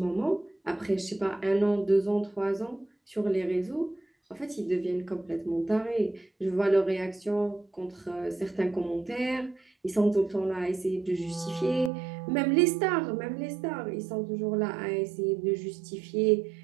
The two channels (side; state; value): left; drops out; at 11.9 s